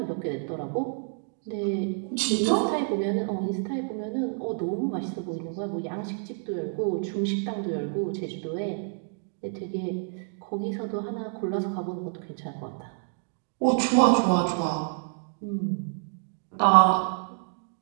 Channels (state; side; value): silent; left; 55 dB below the other